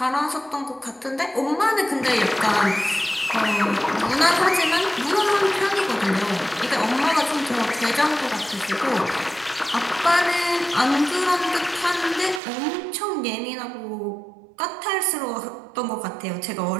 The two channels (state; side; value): drops out; left; at 12.4 s